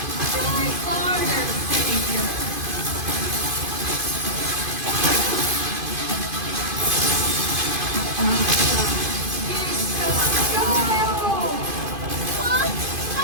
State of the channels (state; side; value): late; left; 2.5 ms